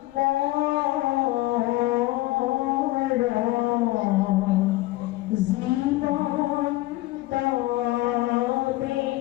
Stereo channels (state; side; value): quieter; right; 18.2 dB